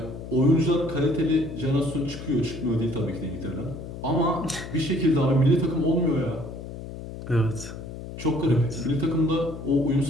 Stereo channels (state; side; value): noise; left; hum, 10 dB below the sound